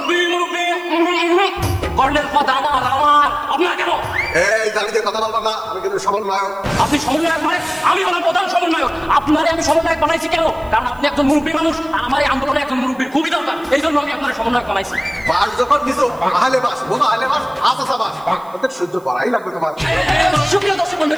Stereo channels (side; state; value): right; noise; hiss, 29 dB below the sound